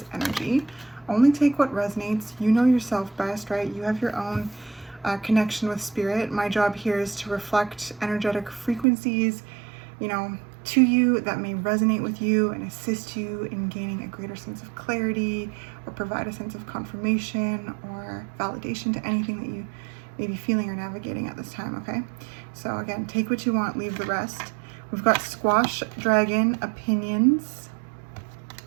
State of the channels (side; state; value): left; drops out; at 8.8 s